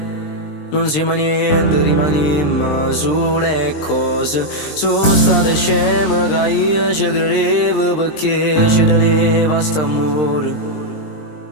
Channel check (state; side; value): late; right; 20 ms